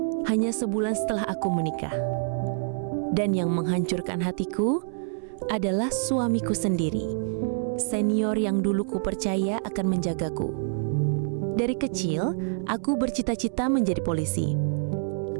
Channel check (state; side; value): silent; left; 60 dB below the other